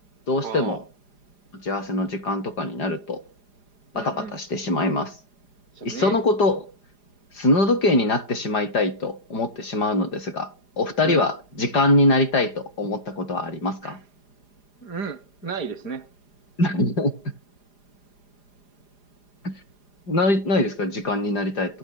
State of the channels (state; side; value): late; right; 4.9 ms